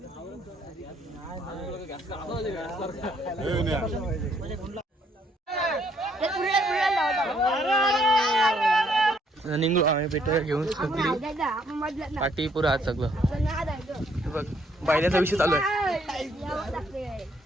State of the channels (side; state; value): both; normal; correlation 0.68